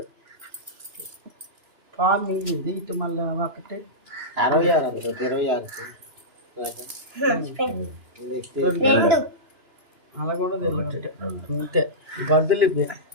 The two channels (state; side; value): late; left; 2.9 ms